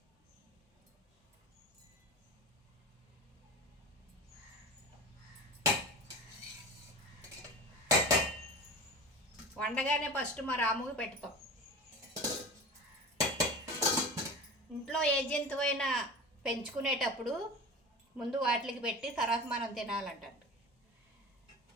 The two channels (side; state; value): both; normal; correlation 0.33